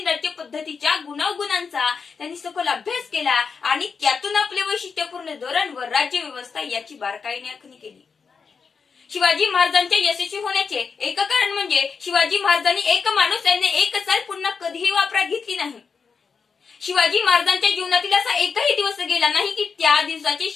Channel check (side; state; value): right; quieter; 5.6 dB